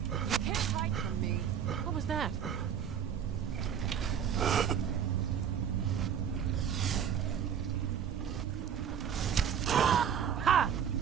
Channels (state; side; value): quieter; left; 8.4 dB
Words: You can't hide from me. What was that? Ha!